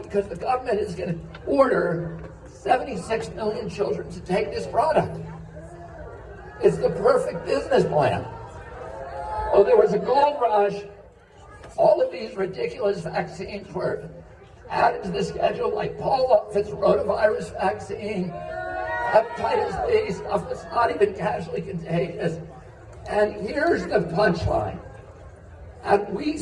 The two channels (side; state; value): both; identical; correlation 1.00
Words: because the government is going to order 76 million children to take this product. It's the perfect business plan. Oh, there was a gold rush. All of these ridiculous vaccines were added to the schedule, like Paul-Offit's rotavirus vaccine, hepatitis B, stuff that's not even casually contagious. And here's the punchline. And we